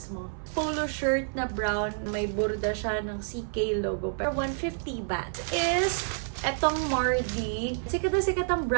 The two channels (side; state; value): left; silent; 56 dB below the other